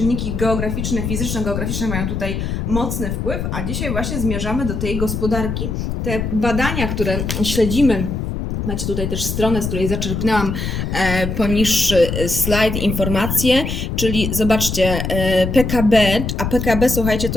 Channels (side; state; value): left; noise; rumble, 3 dB below the sound